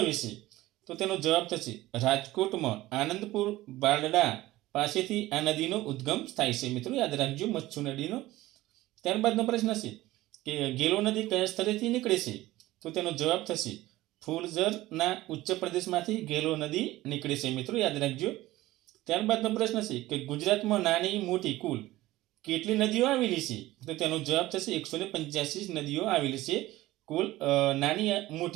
છે? તો તેનો જવાબ થશે રાજકોટમાં આનંદપુર બારડા પાસેથી આ નદીનો ઉદ્ગમ થાય છે મિત્રો. યાદ રાખજો. મચ્છુ નદીનો. ત્યારબાદનો પ્રશ્ન છે કે ગેલો નદી કયા સ્થળેથી નીકળે છે? તો તેનો જવાબ થશે ફૂલઝરના ઉચ્ચ પ્રદેશમાંથી ગેલો નદી નીકળે છે મિત્રો. યાદ રાખજો. ત્યારબાદનો પ્રશ્ન છે કે ગુજરાતમાં નાની મોટી કુલ કેટલી નદીઓ આવેલી છે? તો તેનો જવાબ થશે 185 નદીઓ આવેલી છે. કુલ નાની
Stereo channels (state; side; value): quieter; left; 17.2 dB